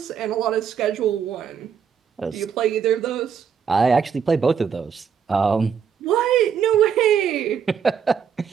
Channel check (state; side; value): quieter; left; 7.2 dB